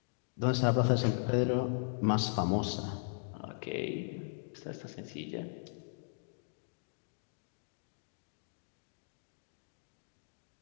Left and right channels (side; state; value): right; silent; digital silence